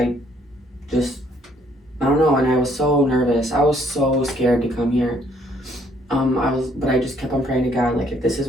don't know, and I was so nervous. I was so scared to come here. But I just kept on praying to God, like, if this is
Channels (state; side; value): normal; both; correlation 0.66